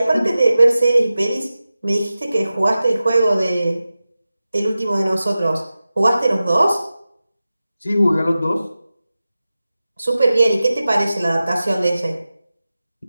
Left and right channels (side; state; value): both; inverted; correlation -0.95